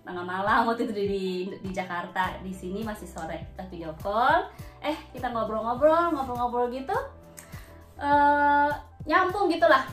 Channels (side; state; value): both; identical; correlation 1.00